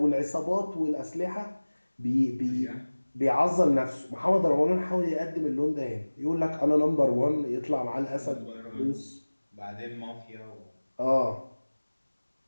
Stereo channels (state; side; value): inverted; both; correlation -1.00